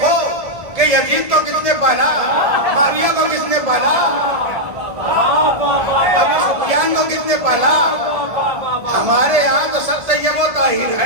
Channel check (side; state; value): left; late; 1.7 ms